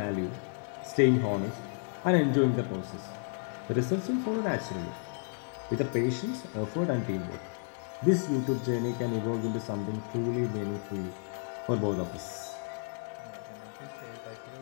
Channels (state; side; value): silent; right; 56 dB below the other